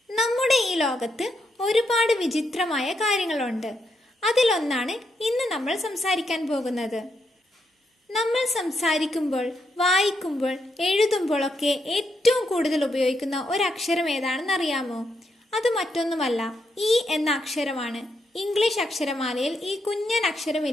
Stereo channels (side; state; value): both; normal; correlation 0.80